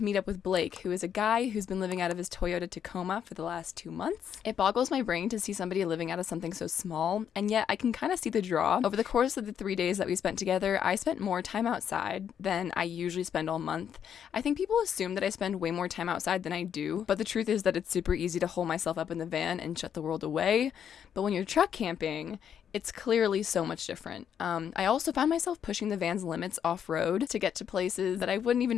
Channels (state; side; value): quieter; right; 8.6 dB